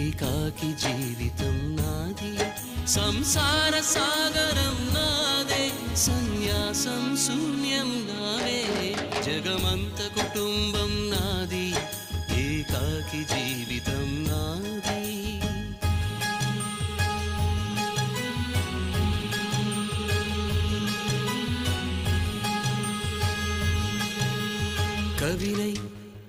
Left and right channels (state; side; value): identical; both; correlation 1.00